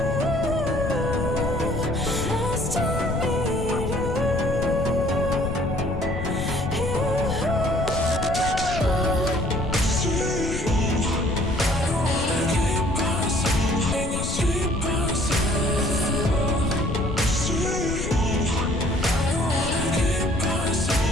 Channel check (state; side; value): noise; left; rumble, 4 dB below the sound